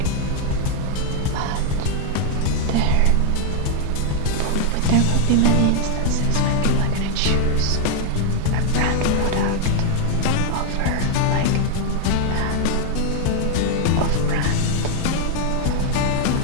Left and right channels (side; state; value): both; different; correlation 0.00